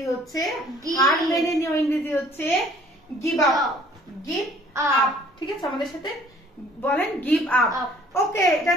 হচ্ছে, হার মেনে নেওয়া ইংরেজি হচ্ছে গিভ আপ। Give up. ঠিক আছে। আমাদের সাথে বলেন গিভ আপ। ওকে, এটা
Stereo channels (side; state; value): both; normal; correlation 0.56